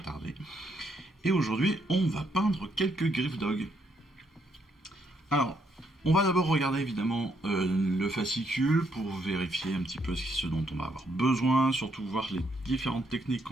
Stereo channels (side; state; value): both; normal; correlation 0.74